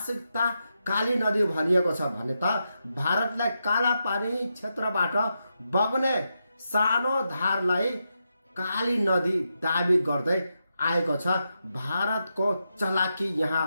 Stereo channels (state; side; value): inverted; both; correlation -0.86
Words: काली नदी भनिएको छ भने त भारतलाई काला पानी क्षेत्रबाट बग्ने सानो धारलाई काली नदी दाबी गर्दै आएको छ। भारतको चलाकी यहाँ